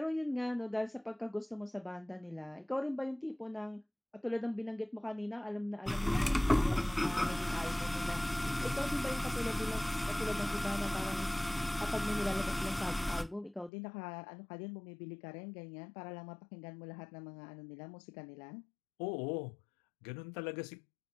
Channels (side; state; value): right; drops out; at 13.7 s